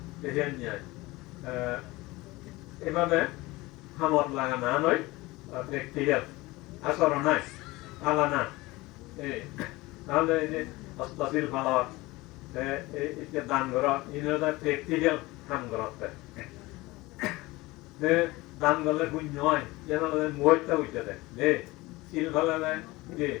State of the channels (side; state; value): right; quieter; 21.0 dB